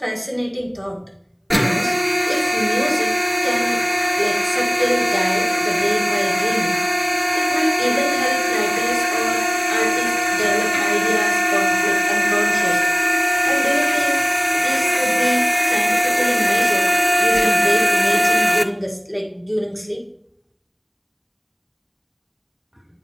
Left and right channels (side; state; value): both; identical; correlation 1.00